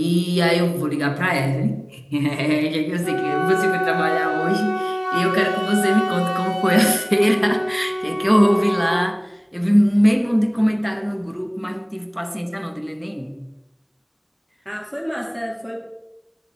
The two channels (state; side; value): identical; both; correlation 1.00